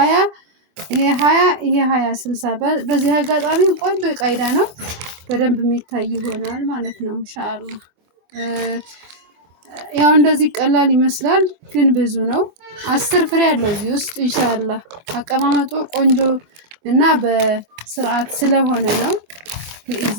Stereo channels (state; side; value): late; left; 25 ms